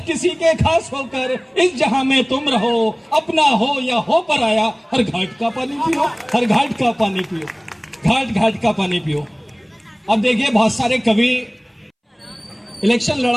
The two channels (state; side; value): identical; both; correlation 1.00